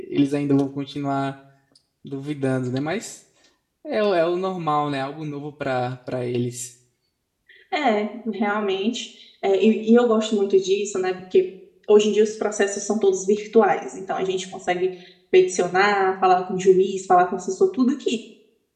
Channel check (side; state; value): both; identical; correlation 1.00